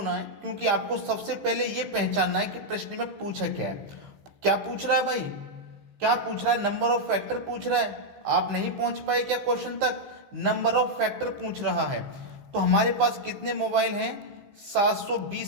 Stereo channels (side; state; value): left; late; 15 ms